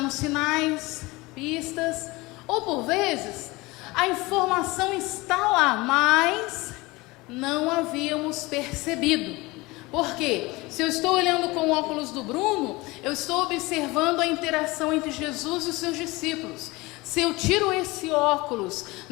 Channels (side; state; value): right; quieter; 22.4 dB